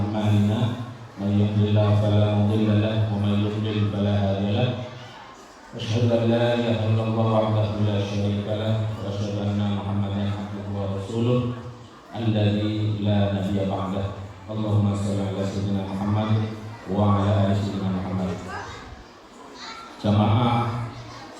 may yahdihillahu fala mudilla lahu wa may yudlil fala hadiya lahu. Asyhadu an la ilaha illallah wahdahu la syarika lahu wa asyhadu anna Muhammadan abduhu wa rasuluh alladzi la nabiyya ba'dah. Allahumma shalli ala sayyidina Muhammad wa ala ali sayyidina Muhammad. Jamaah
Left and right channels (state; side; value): identical; both; correlation 1.00